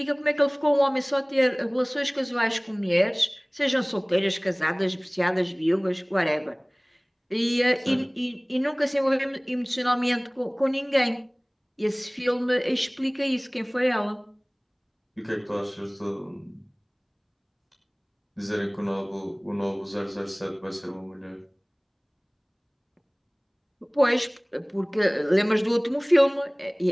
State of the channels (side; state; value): both; identical; correlation 1.00